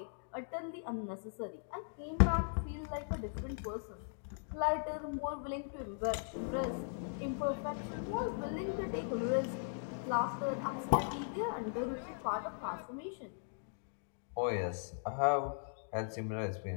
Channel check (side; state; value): right; silent; digital silence